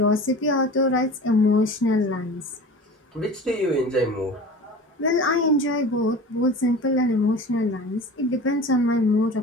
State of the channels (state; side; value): normal; both; correlation 0.37